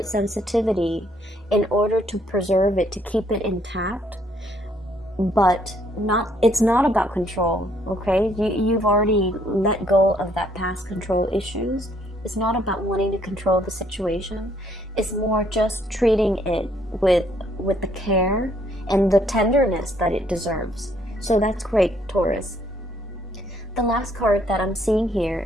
sensitivity in order to preserve it, to keep it intact. But it's not about control, okay? You've already let go of that past control issues. It's not about wanting to control the situation. It's more just treating it with the care and the tenderness that it deserves. So that's great, Taurus. The last card that I'm seeing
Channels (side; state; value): both; normal; correlation 0.67